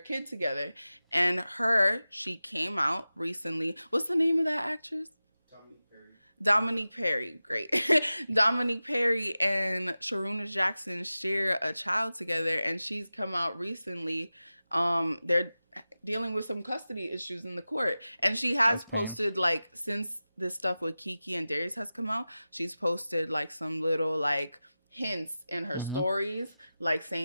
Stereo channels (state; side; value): inverted; both; correlation -0.95